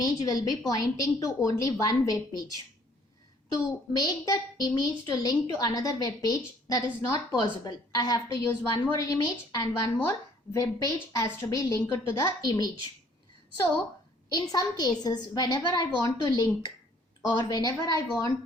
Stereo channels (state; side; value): normal; both; correlation 0.60